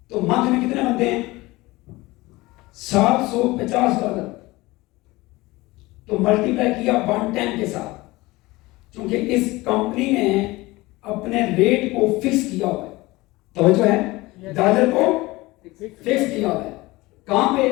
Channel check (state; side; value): quieter; right; 20.8 dB